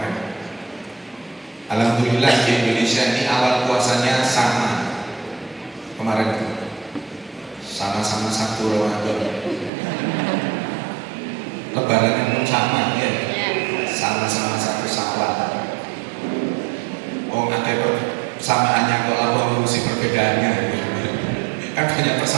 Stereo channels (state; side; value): drops out; left; at 9.7 s